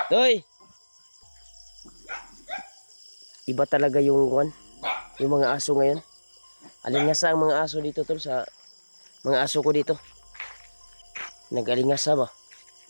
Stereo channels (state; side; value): inverted; both; correlation -1.00